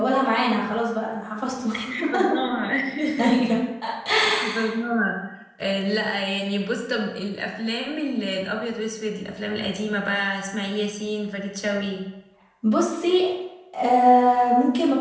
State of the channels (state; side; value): identical; both; correlation 1.00